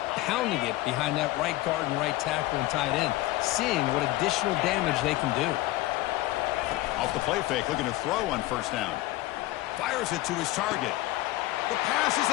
pounding it behind that right guard and right tackle and tight end, seeing what additional damage they can do. Off the play fake, looking to throw on 1st down. Fires it to his target. The pass is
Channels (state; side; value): quieter; right; 17.6 dB